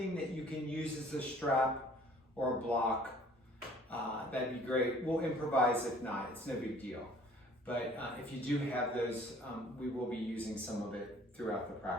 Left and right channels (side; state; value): both; normal; correlation 0.54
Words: that you can use as a strap or a block, that'd be great. We'll improvise if not, it's no big deal. But if you do have those, we will be using some of it throughout the